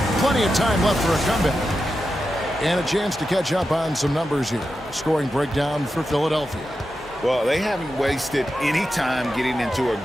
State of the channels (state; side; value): normal; both; correlation 0.89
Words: plenty of time left for a comeback. And a chance to catch up on some numbers here. Scoring breakdown for Philadelphia. Well, they haven't wasted any time getting into a